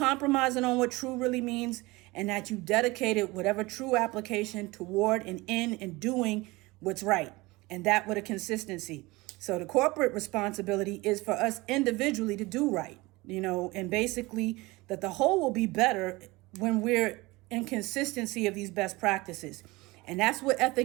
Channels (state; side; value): quieter; left; 22.1 dB